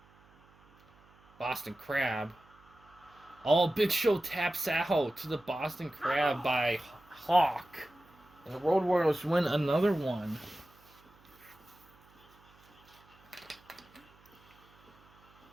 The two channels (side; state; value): right; noise; hum, 28 dB below the sound